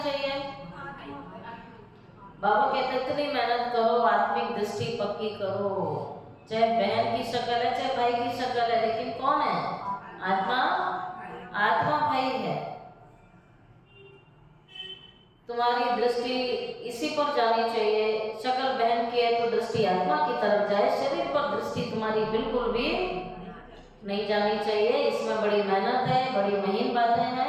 चाहिए? बाबा कहते इतनी मेहनत करो, आत्मिक दृष्टि पक्की करो। चाहे बहन की शक्ल है चाहे भाई की शक्ल है, लेकिन कौन है? आत्मा। आत्मा भाई है। तुम्हारी दृष्टि इसी पर जानी चाहिए। शक्ल बहन की है तो दृष्टि आत्मा की तरफ जाए, शरीर पर दृष्टि तुम्हारी बिल्कुल भी नहीं जानी चाहिए। इसमें बड़ी मेहनत है, बड़ी महीन बातें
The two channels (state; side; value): identical; both; correlation 1.00